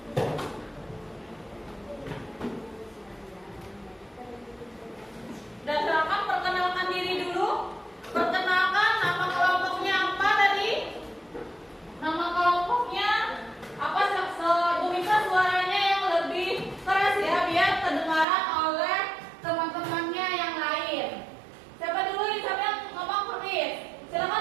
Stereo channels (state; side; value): drops out; left; at 18.2 s